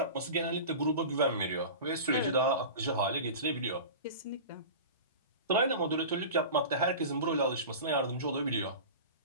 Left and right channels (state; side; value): inverted; both; correlation -0.33